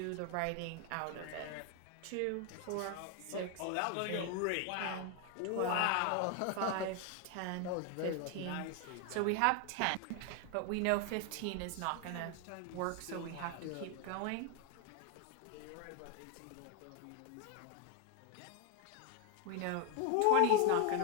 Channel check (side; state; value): both; different; correlation 0.01